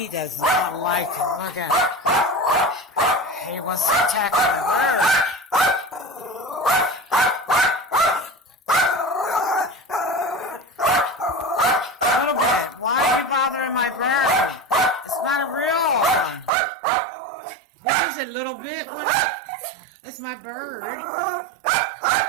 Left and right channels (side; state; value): left; drops out; at 16.5 s